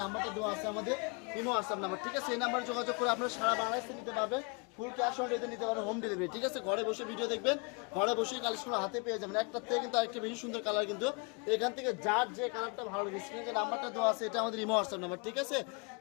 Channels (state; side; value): quieter; right; 32.7 dB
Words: নাম্বারটা দেওয়া আছে আমাদের ইমো হোয়াটসঅ্যাপ নাম্বার। ঠিক আছে, এই নাম্বারে যোগাযোগ করে আপনারা সারা বাংলাদেশে নিতে পারবেন। ফুল ক্যাশ অন ডেলিভারি নিতে পারবেন, হোম ডেলিভারি। ঠিক আছে, ঘরে বসে ভিডিও দেখবেন, ঘরে বসে কালেকশন হাতে পেয়ে যাবেন। একটার থেকে কিন্তু আরেকটা বেশি সুন্দর কালার। কিন্তু এখান থেকে যার যে কালারটা ভালো লাগে, স্ক্রিনে যে নাম্বারটা দেওয়া আছে এটা আমাদের ইমো হোয়াটসঅ্যাপ নাম্বার। ঠিক আছে,